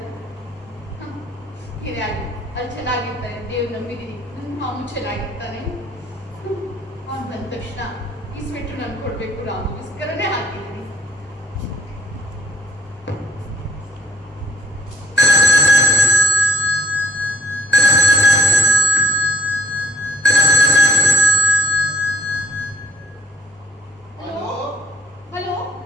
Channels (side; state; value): both; normal; correlation 0.61